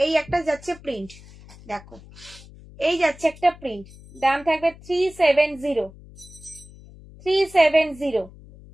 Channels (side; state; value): left; noise; hum, 20 dB below the sound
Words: এই একটা যাচ্ছে প্রিন্ট, দেখো এই যাচ্ছে একটা প্রিন্ট, দাম থাকবে 370, 370।